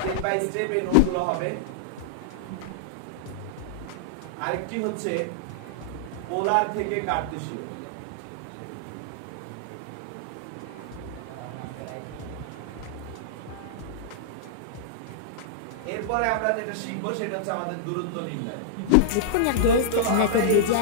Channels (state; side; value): different; both; correlation -0.02